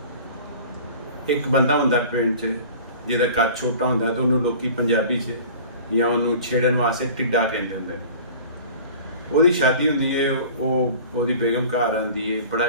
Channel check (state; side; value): inverted; both; correlation -0.43